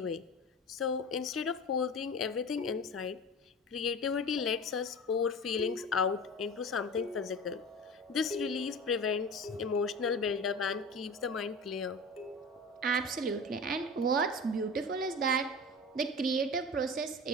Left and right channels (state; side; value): normal; both; correlation 0.33